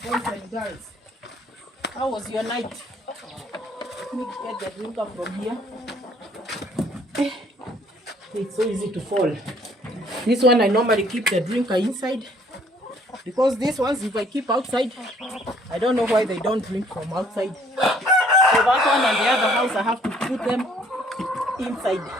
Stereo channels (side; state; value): both; normal; correlation 0.61